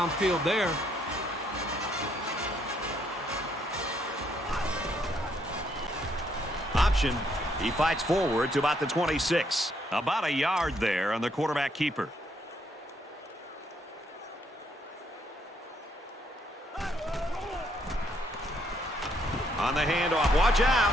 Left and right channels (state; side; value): normal; both; correlation 0.71